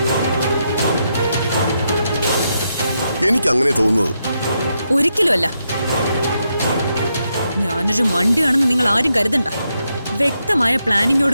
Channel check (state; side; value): inverted; both; correlation -0.82